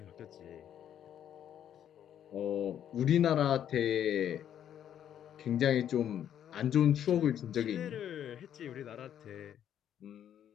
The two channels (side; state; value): right; quieter; 10.0 dB